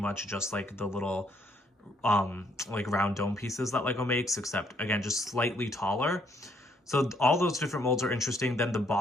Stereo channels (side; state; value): both; normal; correlation 0.69